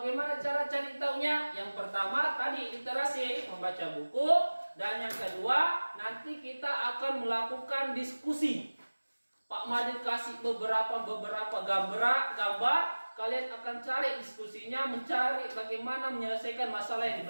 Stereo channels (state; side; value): inverted; both; correlation -1.00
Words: cara cari taunya? Yang pertama tadi literasi, membaca buku. Dan yang kedua, nanti kita akan melakukan diskusi. Pak Madin kasih beberapa gambar. Kalian akan cari diskusinya, mencari bagaimana menyelesaikan masalah yang